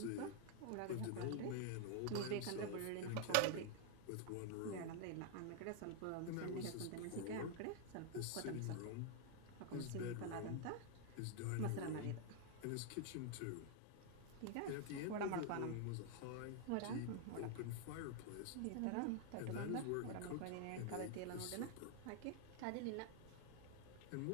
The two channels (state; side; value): different; both; correlation 0.00